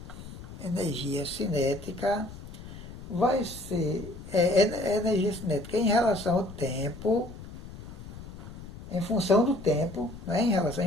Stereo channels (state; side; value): noise; left; rumble, 13 dB below the sound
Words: vai ser energia cinética em relação ao tempo, em função do tempo, né?